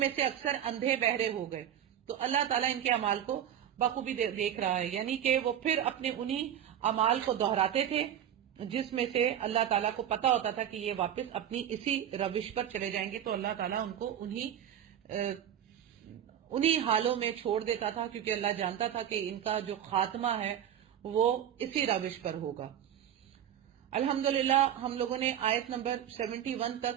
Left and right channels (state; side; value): quieter; left; 10.1 dB